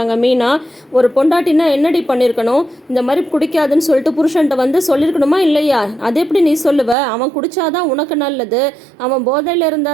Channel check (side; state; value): left; drops out; at 7.0 s